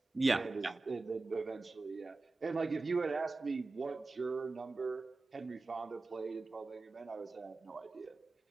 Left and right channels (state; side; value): quieter; left; 3.5 dB